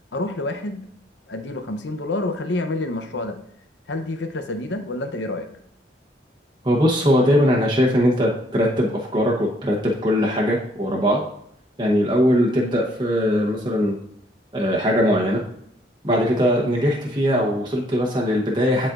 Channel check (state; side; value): normal; both; correlation 0.65